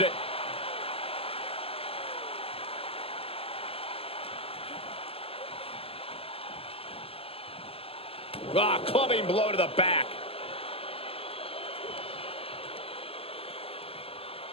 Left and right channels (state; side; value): late; right; 0.28 ms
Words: it. Ah, clubbing blow to the back.